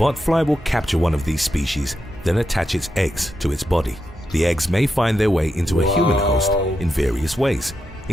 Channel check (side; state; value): both; normal; correlation 0.86